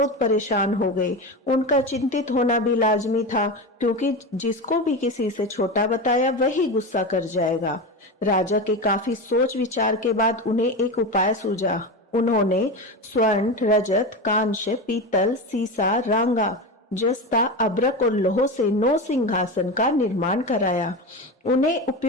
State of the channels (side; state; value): both; normal; correlation 0.21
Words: परेशान हो गए। उनका चिंतित होना भी लाजमी था, क्योंकि जिसको भी किसी से छोटा बताया वही गुस्सा कर जाएगा। राजा के काफी सोच विचार के बाद उन्हें एक उपाय सूझा। उन्होंने स्वर्ण, रजत, कांच, पीतल, सीसा, रांगा, जस्ता, अभ्रक और लोह से 9 सिंहासन का निर्माण कराया। उन्हें